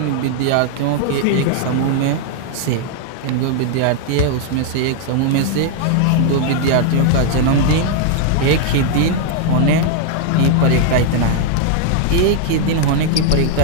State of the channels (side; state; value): both; different; correlation 0.00